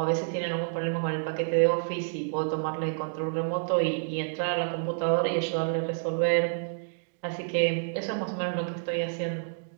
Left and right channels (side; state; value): left; silent; digital silence